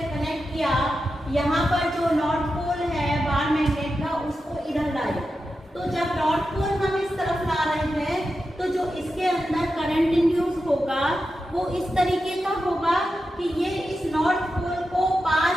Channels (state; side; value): normal; both; correlation 0.90